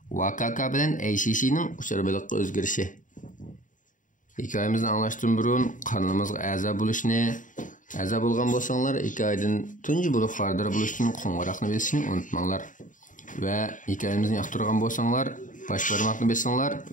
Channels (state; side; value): late; right; 0.38 ms